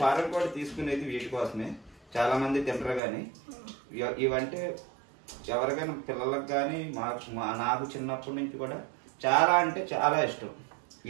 ఫారెన్ కోడి తీసుకునేది వీటి కోసమే. చాలా మంది తింటారు, కానీ ఇవంటే ఎవరికైనా పిల్లలకు కానీ నాకు చిన్నప్పటి నుంచి కూడా చాలా అంటే చాలా ఇష్టం.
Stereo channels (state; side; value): drops out; left; at 3.0 s